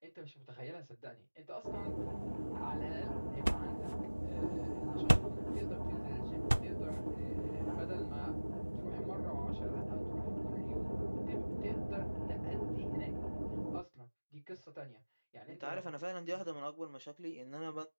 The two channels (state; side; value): inverted; both; correlation -1.00